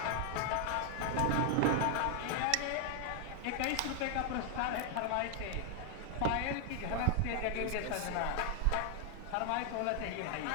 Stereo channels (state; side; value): different; both; correlation 0.00